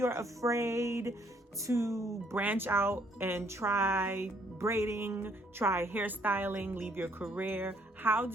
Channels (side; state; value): both; normal; correlation 0.66